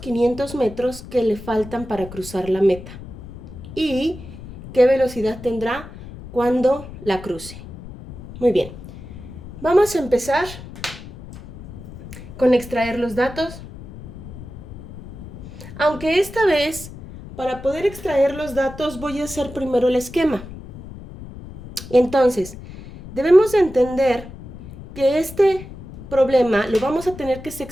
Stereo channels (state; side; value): noise; left; rumble, 14 dB below the sound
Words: metros que le faltan para cruzar la meta? ¿Y qué velocidad tendrá cuando la cruce? Muy bien, vamos a empezar con extraer los datos. Aunque esta vez, para poder extraer los datos, voy a hacer primero el esquema. Entonces, debemos entender que este problema lo vamos a tener que